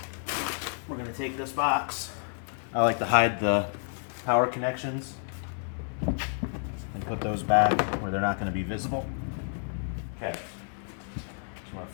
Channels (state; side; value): silent; right; digital silence